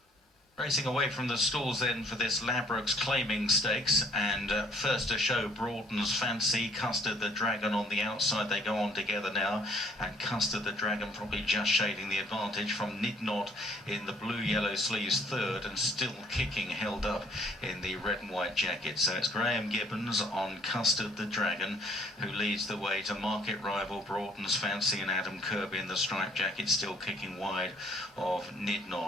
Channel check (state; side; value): normal; both; correlation 0.61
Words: Racing away from the stalls then for this Ladbrokes Claiming Stakes, and first to show Broughton's Fancy, Custard the Dragon on the outside. They go on together now, and Custard the Dragon probably just shading the advantage from Nidnod in the blue-yellow sleeves third, and still kicking, held up in the red and white jacket. So it's Graham Gibbons on Custard the Dragon who leads the way to market rival Broughton's Fancy, and Adam Kirby in the striped jacket still kicking wide of